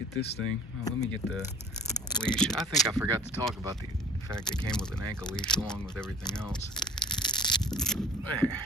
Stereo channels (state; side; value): normal; both; correlation 0.45